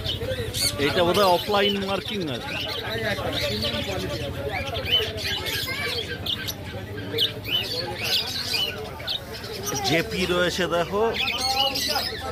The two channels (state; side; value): identical; both; correlation 1.00